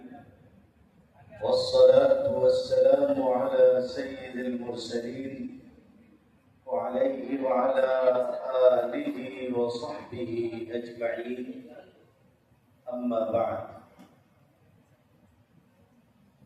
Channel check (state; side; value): identical; both; correlation 1.00